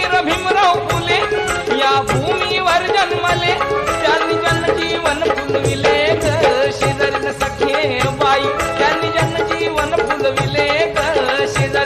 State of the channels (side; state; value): both; identical; correlation 1.00